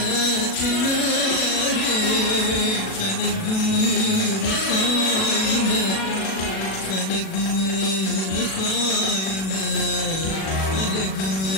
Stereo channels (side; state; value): right; late; 37 ms